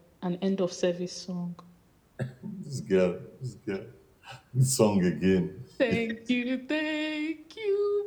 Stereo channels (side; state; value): both; identical; correlation 1.00